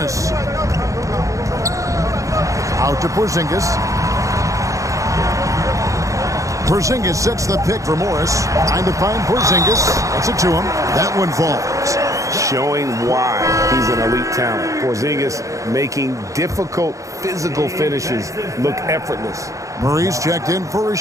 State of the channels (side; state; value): left; late; 0.16 ms